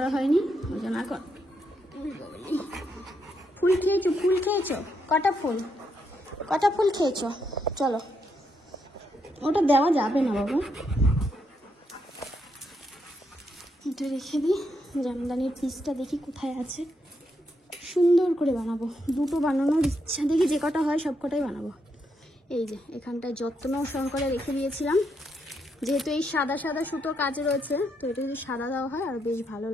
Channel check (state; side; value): normal; both; correlation 0.79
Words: হয়নি, ওই জন্য এখন। ফুল খেয়েছো? ফুল খেয়েছো? কটা ফুল খেয়েছো? চলো, ওটা দেওয়া যাবে না বাবা, এটা রেখে দিই। জামদানির পিসটা দেখি কোথায় আছে, সুন্দর করে বানাবো। দুটো বানানোর ইচ্ছা, দেখি যে কটা হয় সব কটাই বানাবো। এই যে এখানটায় যত্ন সহকারে রেখে দিয়েছিলাম, যেহেতু এই সাদা সাদা সুতো কাজ রয়েছে, তো এটা যদি সাদা দেওয়া হয় আর বেশ ভালো